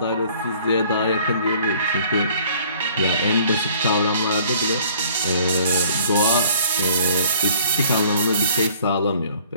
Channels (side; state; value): both; inverted; correlation -0.56